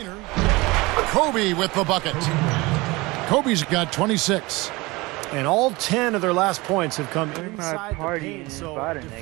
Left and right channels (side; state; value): left; quieter; 22.7 dB